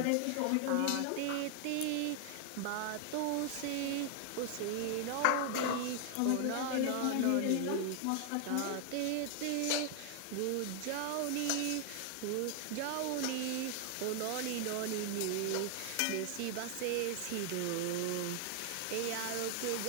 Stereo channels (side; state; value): both; different; correlation 0.00